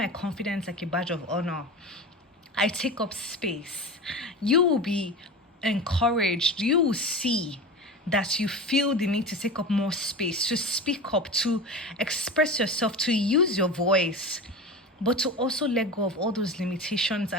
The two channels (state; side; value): normal; both; correlation 0.28